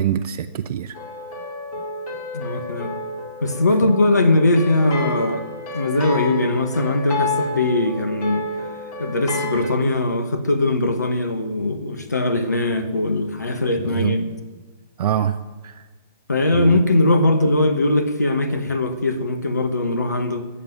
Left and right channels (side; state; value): both; inverted; correlation -0.68